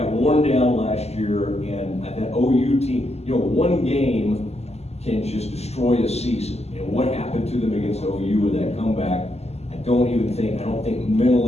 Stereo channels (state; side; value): late; right; 0.30 ms